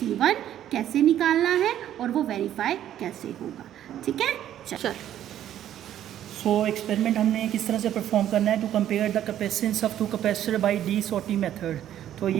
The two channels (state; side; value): quieter; left; 11.4 dB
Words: कैसे निकालना है और वो वेरीफाई कैसे होगा, ठीक है. चल सो एक्सपेरिमेंट हमने किस तरह से परफॉर्म करना है, to compare the capacitance of 2 capacitor by De Sauty method. तो